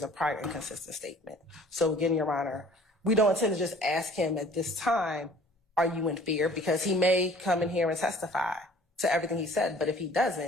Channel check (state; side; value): normal; both; correlation 0.52